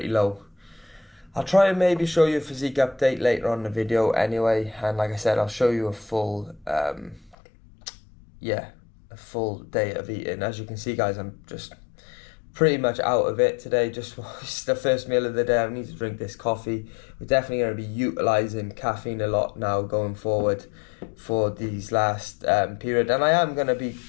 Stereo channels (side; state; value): right; drops out; at 7.4 s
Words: low. I'll try and maybe show you a physique update later on in the video anyway, and like I said, I'll show you a full a full day of eating. As you can see, guys, I'm just pretty much out of it today. Just it's the first meal of the day. I need to drink this coffee. We're definitely going to be utilising caffeine a lot now going forward for these last period, and I am going to be